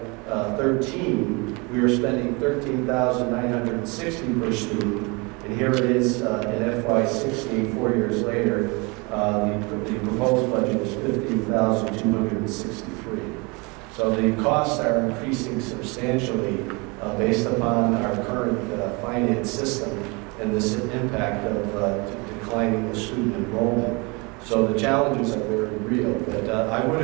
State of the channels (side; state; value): left; quieter; 28.5 dB